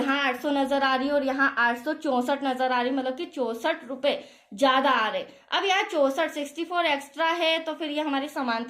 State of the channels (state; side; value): identical; both; correlation 1.00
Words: 800 नजर आ रही है और यहाँ 864 नजर आ रही है, मतलब कि 64 रुपए ज्यादा आ रहे। अब यहाँ 64 एक्स्ट्रा है, तो फिर ये हमारी